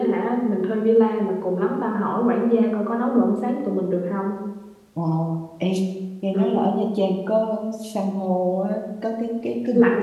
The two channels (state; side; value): identical; both; correlation 1.00